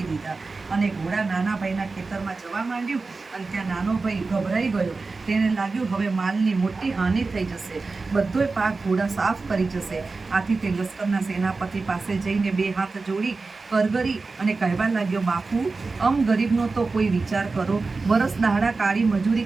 દીધા અને ઘોડા નાના ભાઈના ખેતરમાં જવા માંડ્યું. અને ત્યાં નાનો ભાઈ ગભરાઈ ગયો. તેને લાગ્યું હવે માલની મોટી હાનિ થઈ જશે, બધોય પાક ઘોડા સાફ કરી જશે. આથી તે લશ્કરના સેનાપતિ પાસે જઈને 2 હાથ જોડી કરગરી અને કહેવા લાગ્યો, બાપુ, ગરીબનો તો કોઈ વિચાર કરો. વરસ દહાડા કાળી મજૂરી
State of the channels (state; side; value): quieter; left; 3.9 dB